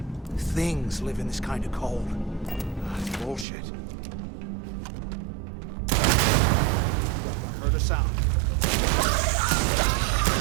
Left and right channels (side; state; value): left; drops out; at 3.5 s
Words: things live in this kind of cold? That's bullshit. I heard a sound.